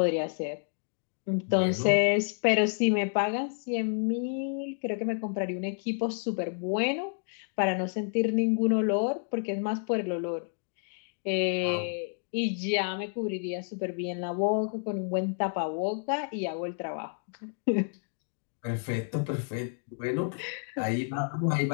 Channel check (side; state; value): right; silent; 58 dB below the other